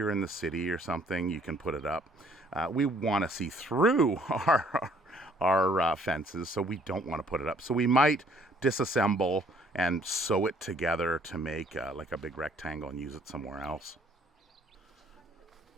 in the city or something, you can put it up. We want to see through our fences, so we don't want to put it up. So we might disassemble and sew it together to make like a big rectangle and use it somewhere else.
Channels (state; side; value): normal; both; correlation 0.61